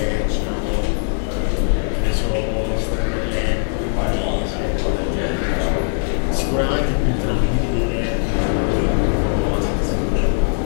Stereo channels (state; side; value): silent; right; digital silence